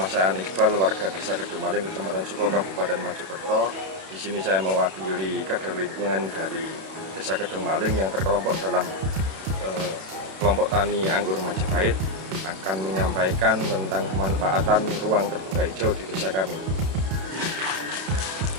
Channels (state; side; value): late; left; 31 ms